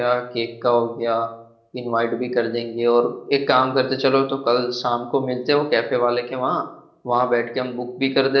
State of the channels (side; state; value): both; identical; correlation 1.00